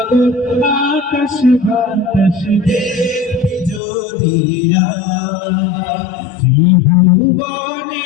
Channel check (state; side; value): drops out; right; at 3.8 s